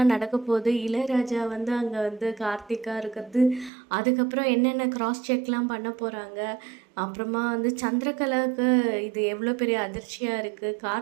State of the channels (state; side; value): drops out; left; at 3.7 s